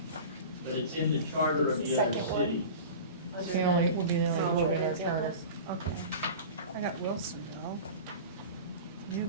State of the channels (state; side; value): inverted; both; correlation -0.36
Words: but it's in the charter of the other Second one. cities. It's the only, will be the only book in our charter. Okay. I got Wilsonville,